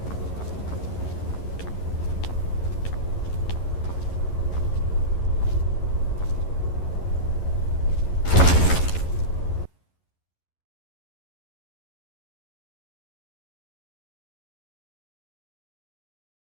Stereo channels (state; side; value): late; right; 11 ms